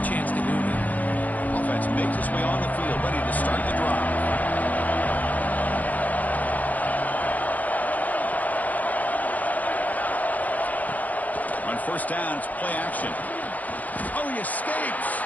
chance to do now. Offense makes its way on the field, ready to start the drive. On first down, it's play action. Oh, he escapes.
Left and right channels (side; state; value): right; late; 0.078 ms